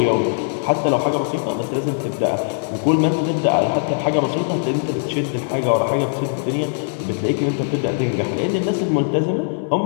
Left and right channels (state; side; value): silent; right; digital silence